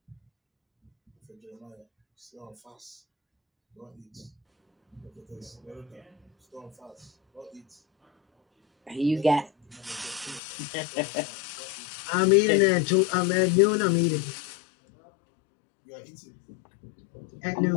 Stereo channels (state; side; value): drops out; right; at 10.4 s